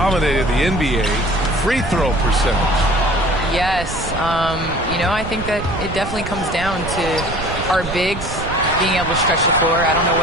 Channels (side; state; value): right; noise; rumble, 8 dB below the sound